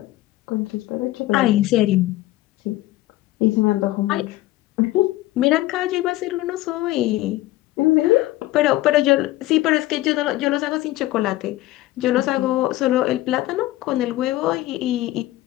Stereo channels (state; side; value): quieter; right; 16.8 dB